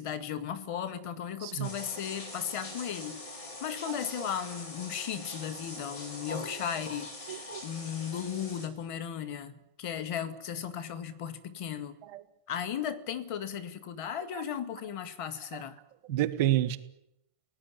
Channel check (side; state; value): right; late; 1.5 ms